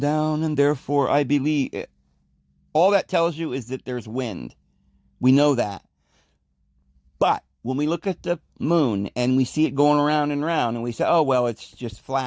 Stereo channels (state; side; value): identical; both; correlation 1.00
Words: and therefore I believe it. All that tells you is that there's wind. We know that. But when we look at the moon and we see it going around and around and we say, oh, well, it's just